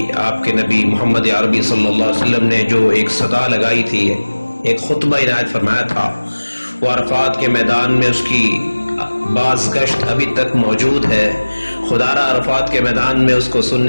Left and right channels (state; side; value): inverted; both; correlation -1.00